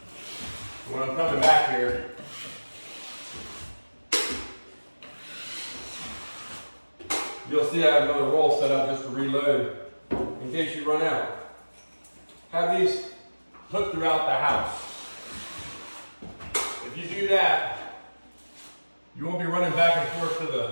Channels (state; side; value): inverted; both; correlation -1.00